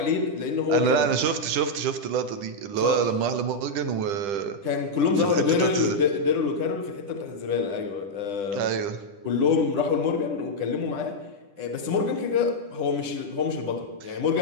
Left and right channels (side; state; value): left; late; 10 ms